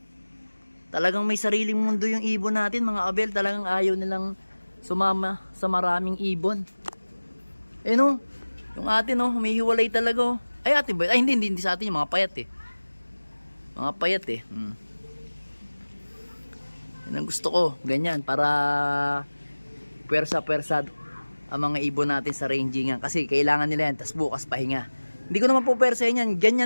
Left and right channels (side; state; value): both; inverted; correlation -1.00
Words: Talagang may sariling mundo yung ibon natin mga Abel. Talagang ayaw nilang sumama sa maraming ibon. Eh no, yung atin oh, humihiwalay talaga oh. Ay atin ba? Ay hindi sa atin yung mga payat eh. Mga payat eh. Yan ang gusto ko, ganyan para pwersa-pwersa ang mga ibon natin sa rangingan kasi kailangan nila yan, tas bukas pahinga. Hindi ko naman po pwersahin yan,